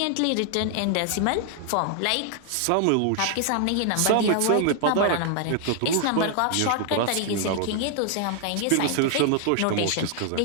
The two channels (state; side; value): different; both; correlation 0.00